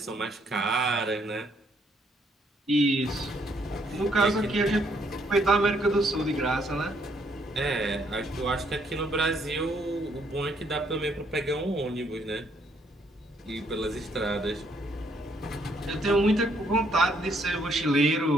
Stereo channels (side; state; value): both; normal; correlation 0.69